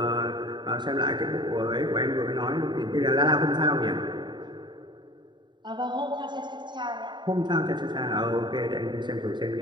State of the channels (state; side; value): late; left; 0.22 ms